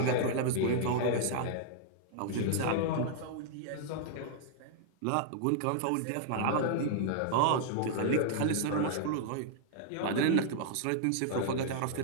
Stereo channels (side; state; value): both; different; correlation -0.01